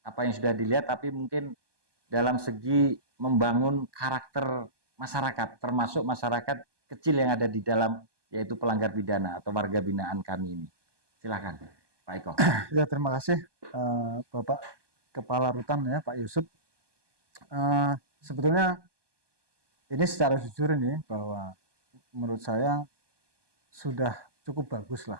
apa yang sudah dilihat, tapi mungkin dalam segi membangun karakter masyarakat, termasuk masyarakat kecil yang ada di dalam, yaitu pelanggar pidana atau warga binaan kami ini. Silakan Pak Eko. Ya, terima kasih Bapak Kepala Rutan ya, Pak Yusuf. Sebetulnya ini secara jujur ini bahwa menurut saya sudah cukup bagus lah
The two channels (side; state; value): left; late; 1.2 ms